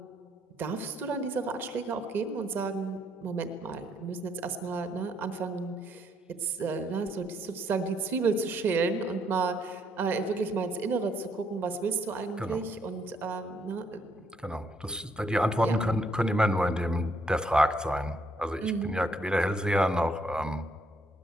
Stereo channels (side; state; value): both; normal; correlation 0.71